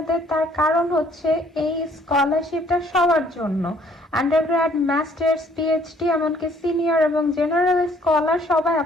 তার কারণ হচ্ছে এই স্কলারশিপটা সবার জন্য, আন্ডারগ্র্যাড, মাস্টার্স, পিএইচডি, এমনকি সিনিয়র এবং জেনারেল স্কলার সবাই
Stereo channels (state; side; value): normal; both; correlation 0.61